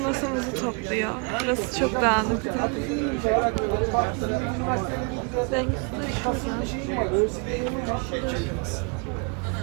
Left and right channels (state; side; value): quieter; left; 35.4 dB